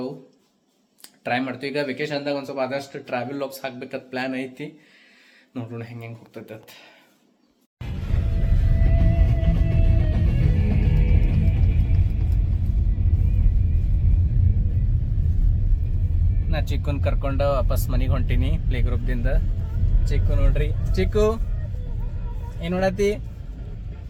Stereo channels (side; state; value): both; identical; correlation 1.00